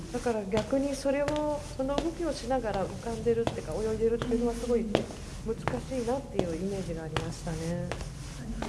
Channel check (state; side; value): identical; both; correlation 1.00